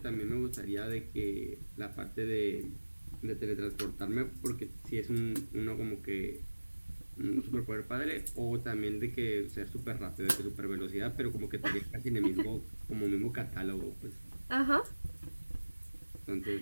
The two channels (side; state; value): both; inverted; correlation -1.00